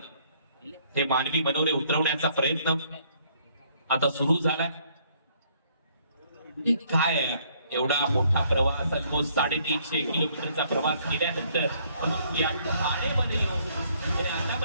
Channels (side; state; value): both; inverted; correlation -0.65